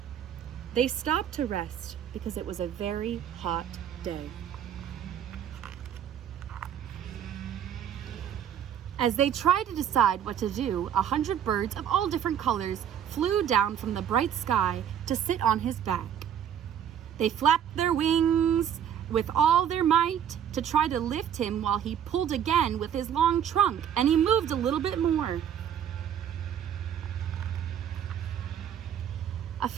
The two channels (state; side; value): quieter; left; 9.2 dB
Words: They stopped to rest because it was a very hot day. As they tried to decide what to do, 100 birds of all different colors flew down from the bright sky to sit on his back. They flapped their wings with all their might to try to lift him while he pulled again with his long trunk, and he moved a little bit more. A